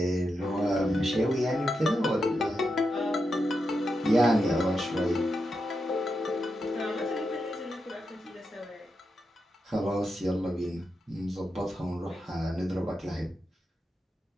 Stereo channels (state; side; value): normal; both; correlation 0.86